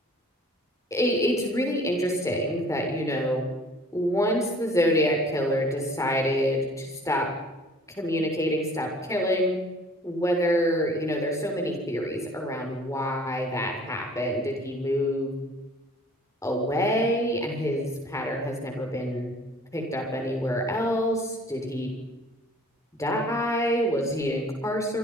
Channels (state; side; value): normal; both; correlation 0.51